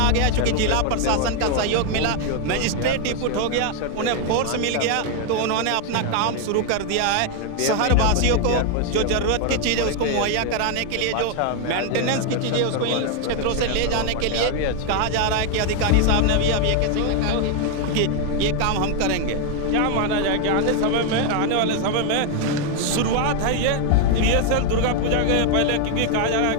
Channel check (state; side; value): different; both; correlation 0.00